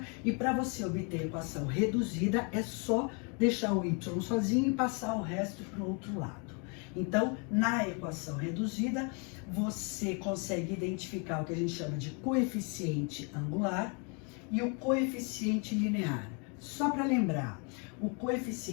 e para você obter a equação reduzida é só deixar o y sozinho e passar o resto para o outro lado. Então, na equação reduzida, você consegue identificar o que a gente chama de coeficiente angular e o coeficiente linear. Só para lembrar, o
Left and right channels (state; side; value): quieter; right; 35.5 dB